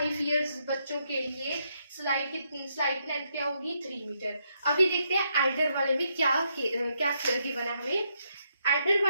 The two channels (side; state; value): both; inverted; correlation -0.77